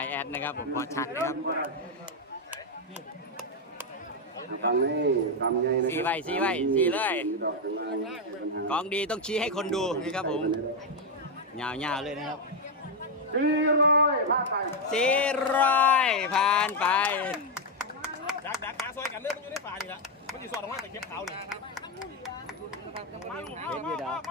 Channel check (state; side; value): normal; both; correlation 0.04